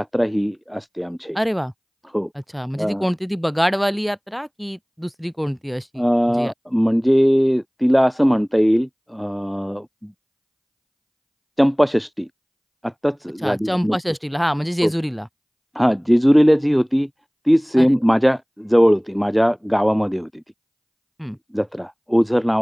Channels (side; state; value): both; identical; correlation 1.00